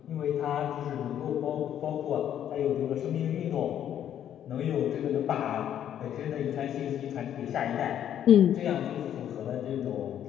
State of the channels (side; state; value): right; quieter; 10.3 dB